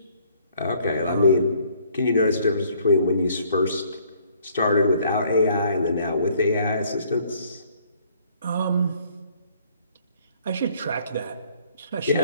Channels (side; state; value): both; inverted; correlation -0.61